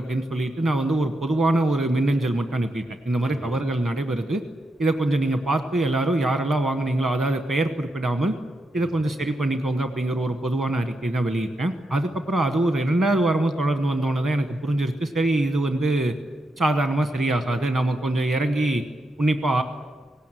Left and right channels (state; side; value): normal; both; correlation 0.84